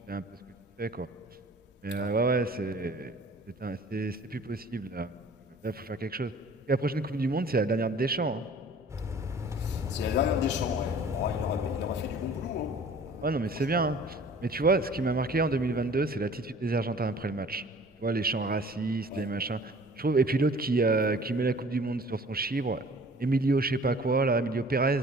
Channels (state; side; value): normal; both; correlation 0.48